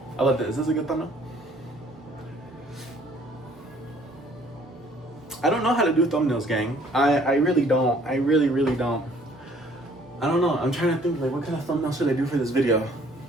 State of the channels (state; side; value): normal; both; correlation 0.58